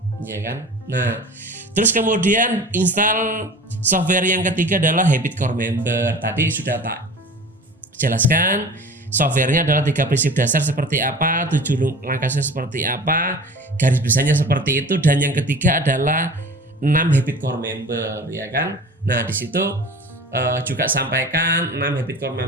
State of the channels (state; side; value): normal; both; correlation 0.39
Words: ya kan. Nah terus kemudian install software yang ketiga adalah Habit Core Member. Tadi sudah tak jelaskan, softwarenya adalah 3 prinsip dasar seperti apa, 7 langkahnya seperti apa, garis besarnya seperti itu, dan yang ketiga adalah 6 Habit Core Member ya kan. Nah di situ juga sampaikan 6 habit core